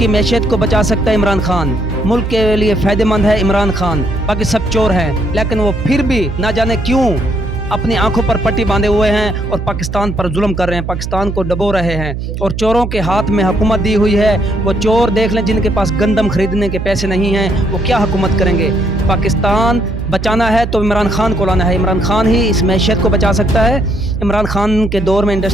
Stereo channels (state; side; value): noise; right; hum, 5 dB below the sound